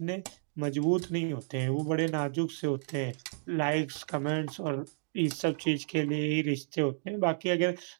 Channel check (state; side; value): silent; left; digital silence